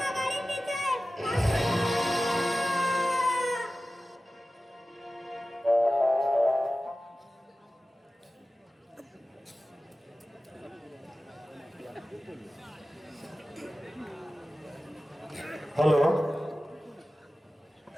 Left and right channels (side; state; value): both; normal; correlation 0.95